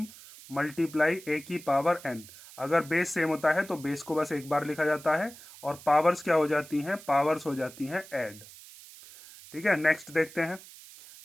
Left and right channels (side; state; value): right; noise; hiss, 19 dB below the sound